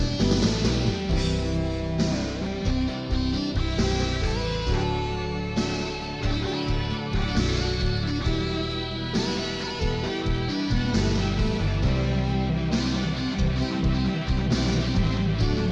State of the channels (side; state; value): both; identical; correlation 1.00